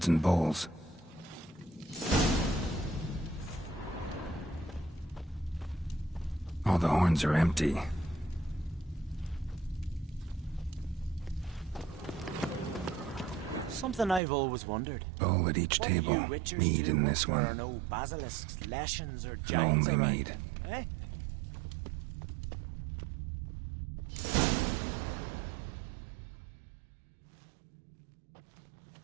and bowls. All the horns are empty. Something I've always wondered. Bowl at each table. Mead in this one. No basilisks, lashings, or And only mead. Eh?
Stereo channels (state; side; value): drops out; left; at 14.2 s